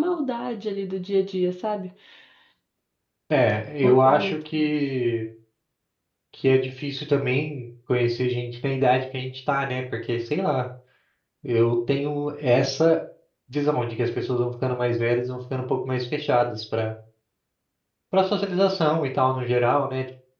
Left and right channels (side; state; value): both; identical; correlation 1.00